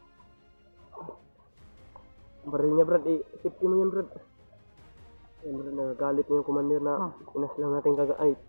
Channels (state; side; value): inverted; both; correlation -1.00